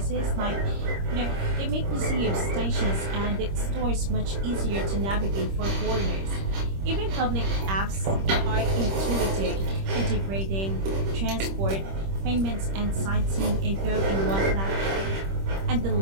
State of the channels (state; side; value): late; left; 26 ms